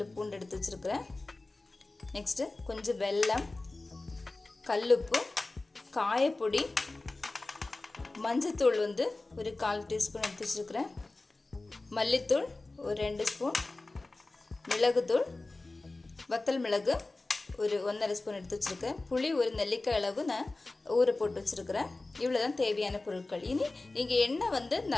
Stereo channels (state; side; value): quieter; right; 3.2 dB